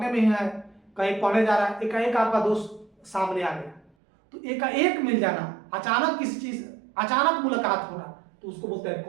में ही है, कहीं पढ़ने जा रहा है, एकाएक आपका दोस्त सामने आ गया, तो एकाएक मिल जाना, अचानक किसी चीज, अचानक मुलाकात होना, तो उसको बोलते हैं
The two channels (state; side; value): drops out; left; at 3.9 s